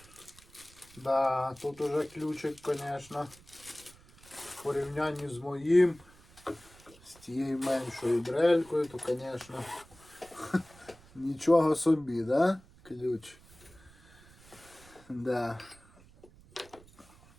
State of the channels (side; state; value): right; noise; rumble, 24 dB below the sound